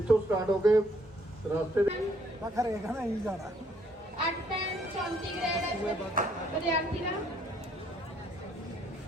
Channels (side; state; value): both; normal; correlation 0.66